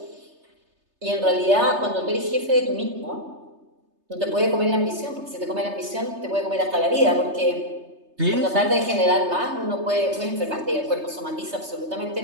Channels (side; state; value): left; late; 3.3 ms